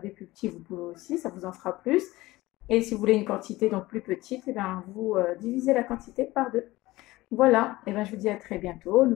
des plus petits, vous pouvez aussi, ça vous en fera plus. Et si vous voulez une quantité donc plus petite, vous divisez la quantité par 2. Voilà, je vous dis à très bientôt.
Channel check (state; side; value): quieter; right; 18.8 dB